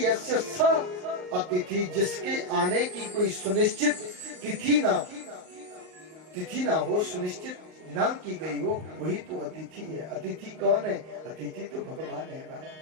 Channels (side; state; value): left; late; 39 ms